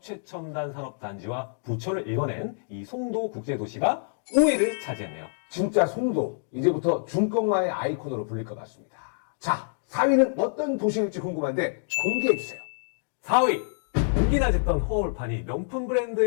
최첨단 산업단지와 부처를 읽어낸 이 송도 국제도시가 5위를 차지했네요. 진짜 송도 이제부터 중꺾마의 아이콘으로 불릴 것 같습니다. 자 4위는 어떤 도시일지 궁금한데 공개해주세요. 4위! 무기나 짓던 허울판이 명품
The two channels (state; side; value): silent; right; digital silence